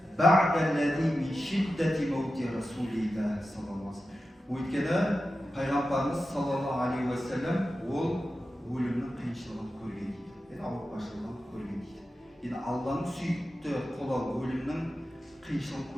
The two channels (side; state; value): both; normal; correlation 0.92